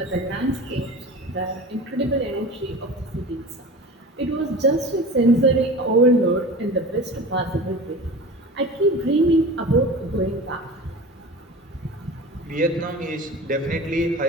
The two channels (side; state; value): both; normal; correlation 0.35